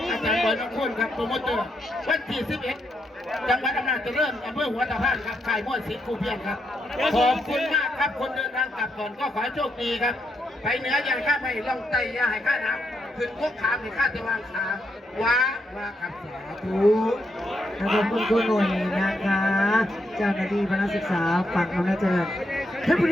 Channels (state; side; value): normal; both; correlation 0.80